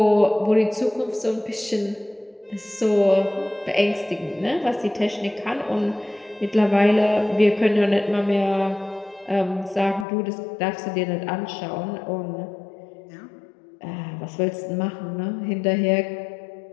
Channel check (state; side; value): drops out; right; at 10.1 s